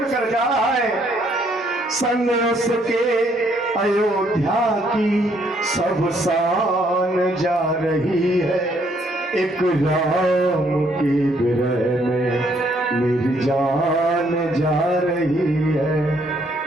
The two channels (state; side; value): normal; both; correlation 0.68